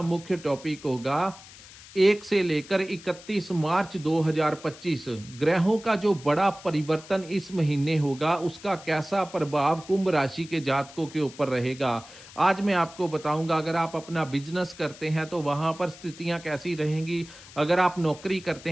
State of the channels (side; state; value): left; noise; hiss, 19 dB below the sound